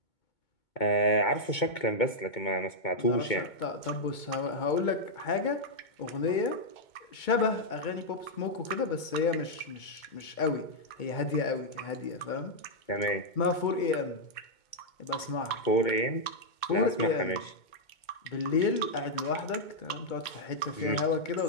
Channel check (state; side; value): late; right; 2.2 ms